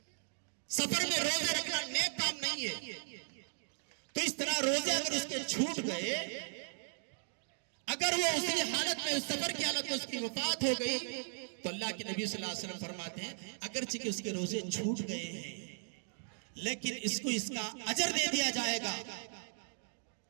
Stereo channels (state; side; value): silent; left; digital silence